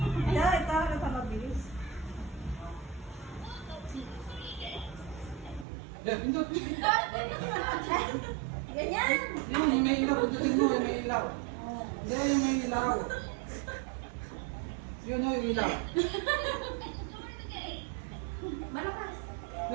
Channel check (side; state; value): left; drops out; at 5.7 s